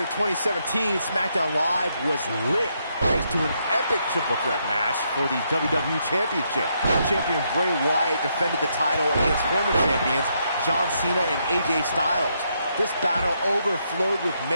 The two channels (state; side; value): inverted; both; correlation -0.77